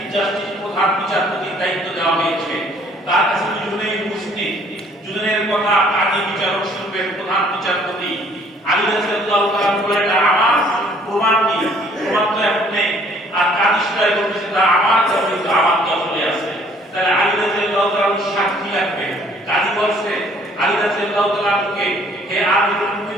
জাস্টিস প্রধান বিচারপতির দায়িত্ব দেওয়া হয়েছে। তার কাছে দুজনেই উপস্থিত। দুজনের কথা কাজী বিচারক শুনবেন প্রধান বিচারপতি। আলী রাদিয়াল্লাহু তাআলা বলেন, আমার প্রমাণ কি? প্রমাণ তো এখন নেই। আর কাজী সুরাই বলতেছে, আমার দখলে আছে। তাহলে আলী রাদিয়াল্লাহু তাআলা সাক্ষী লাগবে। কাজী বলছে আলী রাদিয়াল্লাহু তাআলাকে, হে আমিরুল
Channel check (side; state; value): both; normal; correlation 0.59